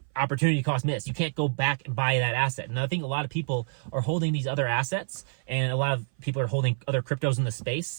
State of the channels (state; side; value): silent; left; 57 dB below the other